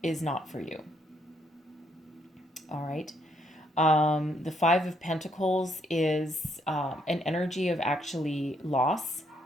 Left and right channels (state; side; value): normal; both; correlation 0.72